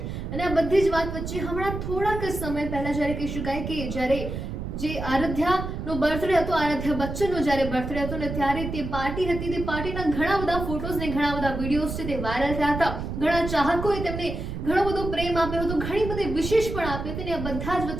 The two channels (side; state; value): right; noise; rumble, 6 dB below the sound